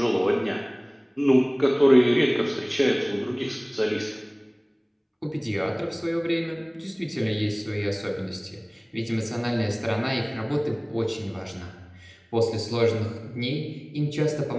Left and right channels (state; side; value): identical; both; correlation 1.00